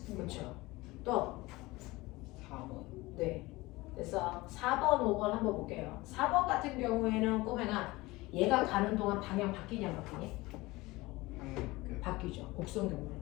그렇죠. 또 4번. 네. 그래서 4번, 5번 한번 볼게요. 4번 같은 경우에는 꼬맹아 얘가 가는 동안 방향 바뀌냐 안 바뀌니? 바뀌죠. 곡선 경로로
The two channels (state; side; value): quieter; right; 20.9 dB